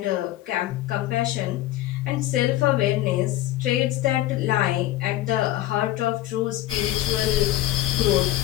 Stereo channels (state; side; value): quieter; right; 14.7 dB